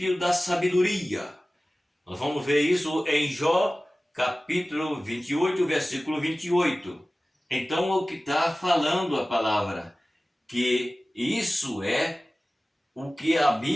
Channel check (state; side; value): normal; both; correlation 0.97